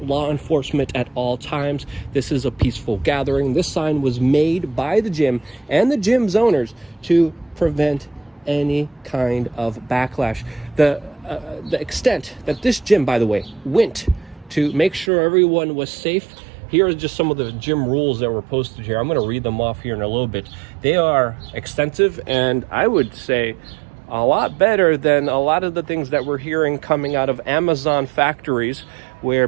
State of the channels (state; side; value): drops out; left; at 15.1 s